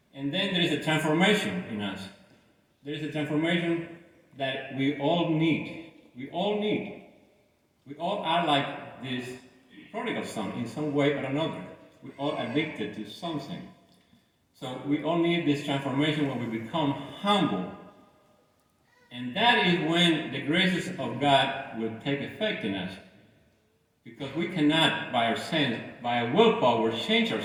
And then there is a transformation in us. There is a transformation that we all need. We all need. We all are like this prodigal son in some way or another. We all addicted to something. So we all need this transformation when we become humble. And that is when the graces of God will take effect in us. Because we cannot, by our sense, by our willpower, change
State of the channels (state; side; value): identical; both; correlation 1.00